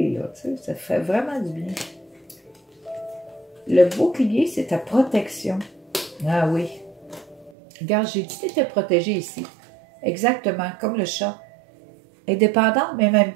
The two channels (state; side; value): drops out; left; at 7.5 s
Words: Là, tu sais, ça fait vraiment du bien. Le bouclier, c'est ta protection. Ah oui. Regarde, j'ai dit que tu étais protégé ici. Exactement, comme le chat. Indépendante, mais en même